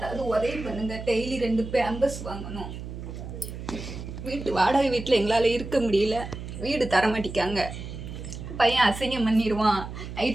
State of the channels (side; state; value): right; noise; hum, 9 dB below the sound